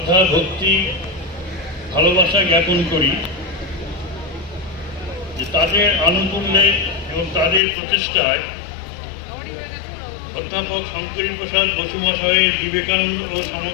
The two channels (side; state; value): right; drops out; at 7.6 s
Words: ভক্তি, ভালোবাসা জ্ঞাপন করি যে তাদের আনুকূল্যে এবং তাদের প্রচেষ্টায় অধ্যাপক শঙ্করী প্রসাদ বসু মহাশয়ের বিবেকানন্দ ও